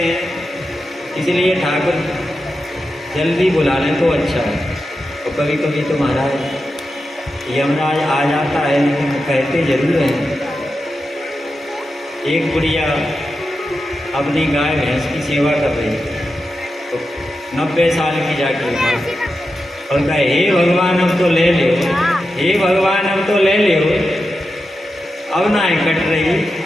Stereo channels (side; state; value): both; normal; correlation 0.90